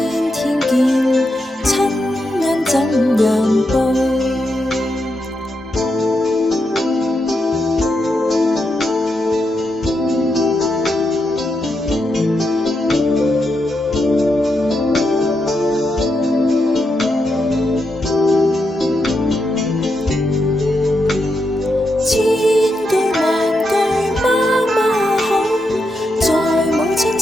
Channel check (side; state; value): both; normal; correlation 0.84